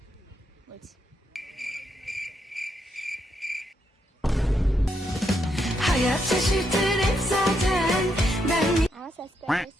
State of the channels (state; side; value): normal; both; correlation 0.79